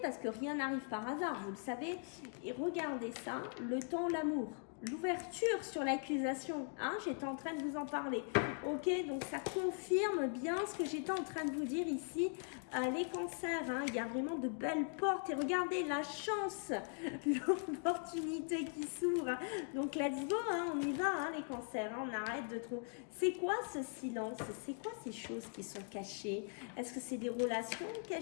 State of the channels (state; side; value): silent; right; 51 dB below the other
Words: parce que rien n'arrive par hasard, vous le savez. Et regardez ça, le temps, l'amour. L'ouverture sur l'accusation, hein, j'étais en train de vous en parler. Ok, donc ça confirme bien ce que j'étais en train de vous dire ici. Les cancers, hein, il y a vraiment de belles portes. Et regardez la chance, l'opportunité qui s'ouvre. Donc let's go, hein, on y va, hein, les cancers. Hein, on arrête de trop. C'est quoi ce silence? C'est quoi ces choses qui sont cachées? Est-ce que c'est des relations